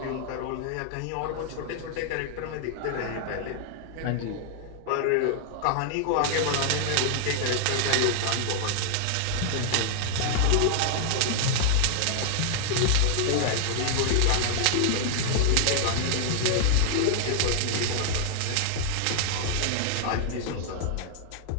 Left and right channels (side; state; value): both; different; correlation 0.00